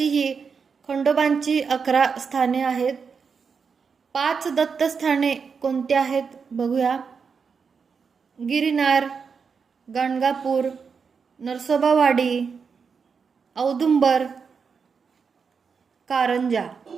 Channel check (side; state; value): left; quieter; 5.8 dB